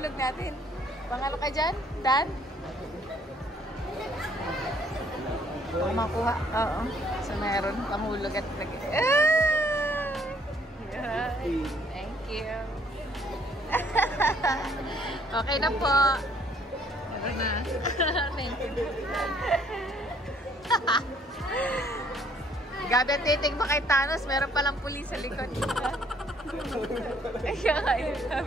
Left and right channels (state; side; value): normal; both; correlation 0.63